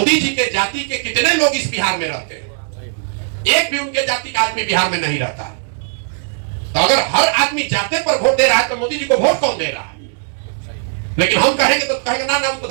जी के जाति के कितने लोग इस बिहार में रहते हैं? एक भी उनके जाति का आदमी बिहार में नहीं रहता है। तो अगर हर आदमी जाते पर वोट दे रहा है तो मोदी जी को वोट कौन दे रहा है? लेकिन हम कहेंगे तो कहेंगे ना ना उनको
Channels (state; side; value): silent; left; digital silence